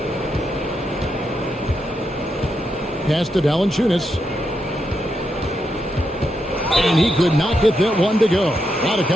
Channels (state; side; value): normal; both; correlation 0.83